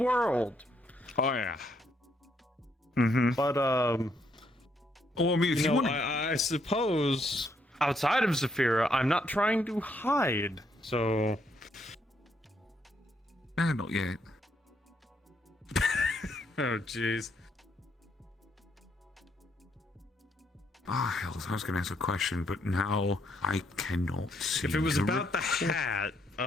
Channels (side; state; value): both; normal; correlation 0.74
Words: Oh, yeah. Mm-hmm. But, well, I mean, if you want to... I suppose outside of Zafira, I'm not trying to hide, so... Not yet. Oh, jeez. Ah, hell, I was going to ask a question, but now I cannot see. If it was about the hat,